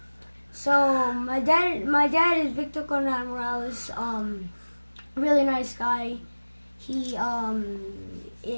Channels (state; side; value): inverted; both; correlation -1.00